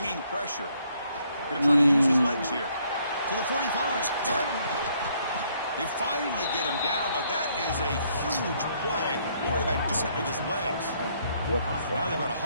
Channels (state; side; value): inverted; both; correlation -0.68